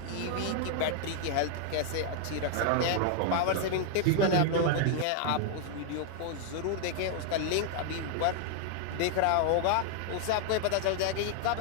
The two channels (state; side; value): different; both; correlation 0.00